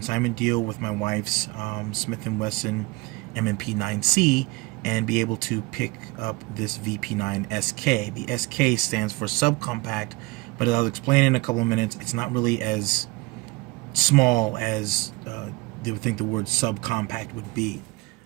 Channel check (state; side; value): quieter; left; 23.7 dB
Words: deal with my wife's Smith & Wesson M&P9c and be able to pick up this VP9SK. The SK stands for subcompact, but as I'll explain in a couple of minutes, it's not really as small as they would think the word subcompact would be.